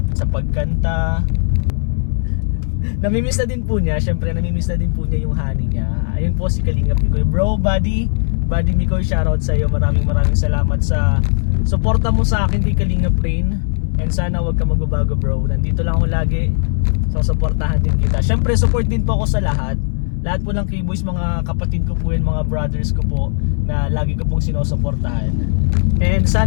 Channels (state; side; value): silent; right; 68 dB below the other